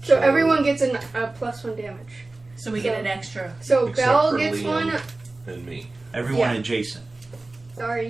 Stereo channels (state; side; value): quieter; left; 3.1 dB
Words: So everyone gets a +1 damage. So we get an extra. So Except Belle for gets Liam. one. And me. Everyone Yeah. adjacent.